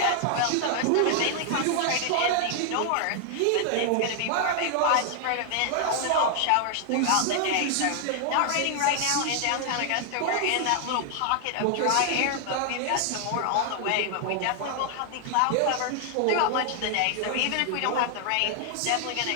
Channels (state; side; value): different; both; correlation 0.00